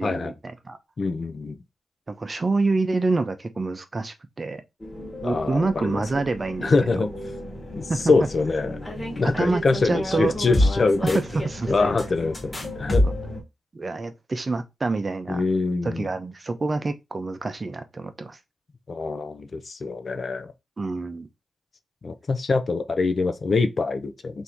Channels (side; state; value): both; normal; correlation 0.90